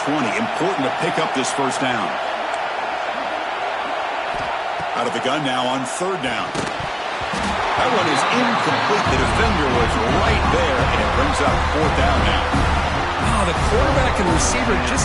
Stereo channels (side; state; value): both; identical; correlation 1.00